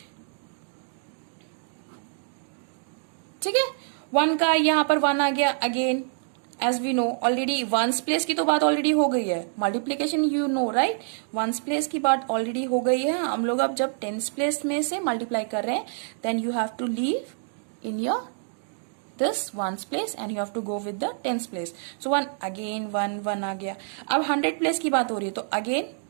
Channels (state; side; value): silent; left; digital silence